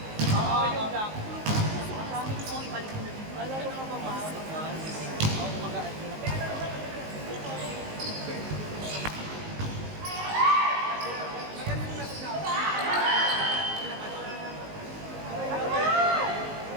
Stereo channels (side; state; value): left; late; 19 ms